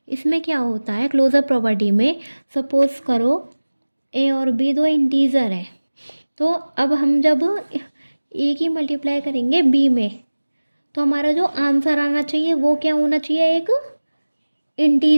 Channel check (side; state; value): both; inverted; correlation -1.00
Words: इसमें क्या होता है क्लोजर प्रॉपर्टी में, सपोज़ करो ए और बी दो इंटीजर हैं। तो अब हम जब ए की मल्टीप्लाई करेंगे बी में, तो हमारा जो आंसर आना चाहिए वो क्या होना चाहिए, एक